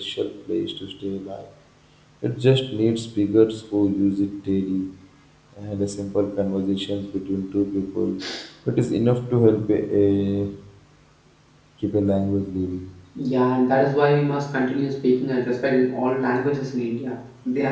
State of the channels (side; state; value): both; identical; correlation 1.00